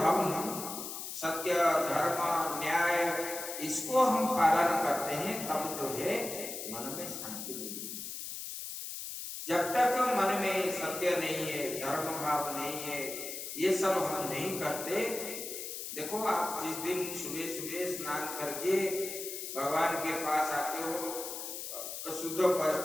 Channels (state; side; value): noise; left; hiss, 7 dB below the sound